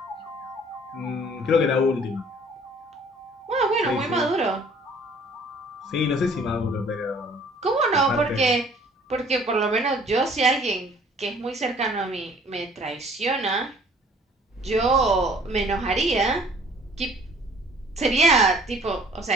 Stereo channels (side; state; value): both; normal; correlation 0.55